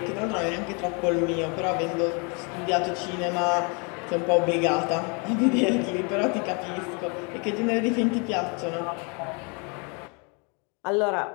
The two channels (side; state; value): right; quieter; 33.9 dB